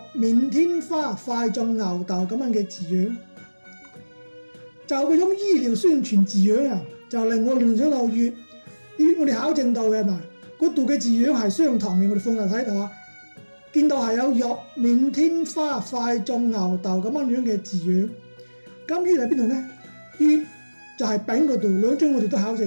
面天花快種牛痘咁樣嘅字樣，就嗰種醫療宣傳字樣啊，就令我聯想到粵我哋考證到嘅嘛，嗰度嘅字樣係相同嘅，我哋放入睇到啊，見到係有玉面天花快種牛痘咁樣嘅字樣。咁於喺邊度呢？粵就係丙嗰度，兩張我哋都考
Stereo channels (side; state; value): both; inverted; correlation -1.00